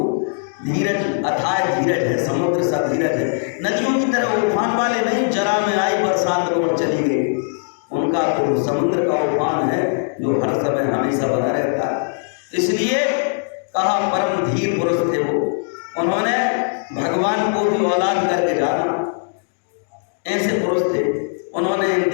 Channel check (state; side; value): silent; right; digital silence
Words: धीरज अथाह धीरज है, समुद्र सा धीरज है। नदियों की तरह उफान वाले नहीं, जरा में आई बरसात और चली गई। उनका तो समुद्र का उफान है जो हर समय हमेशा बना रहता है। इसलिए कहा परम धीर पुरुष थे वो, उन्होंने भगवान को भी औलाद करके जाना, ऐसे पुरुष थे। उन्होंने इन